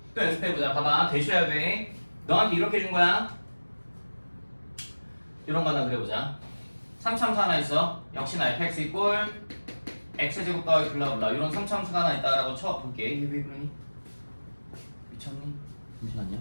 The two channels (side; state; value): both; inverted; correlation -1.00